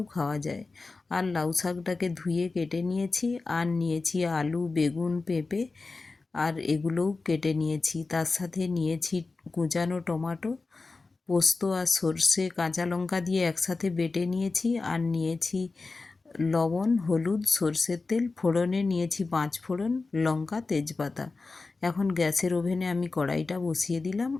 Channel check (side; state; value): right; quieter; 3.8 dB